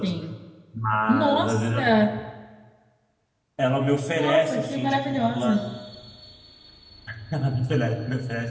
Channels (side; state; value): both; identical; correlation 1.00